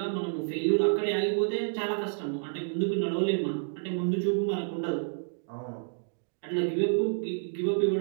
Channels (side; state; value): left; silent; digital silence